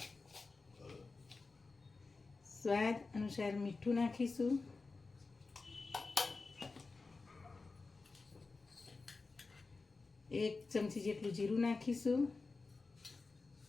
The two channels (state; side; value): quieter; right; 3.9 dB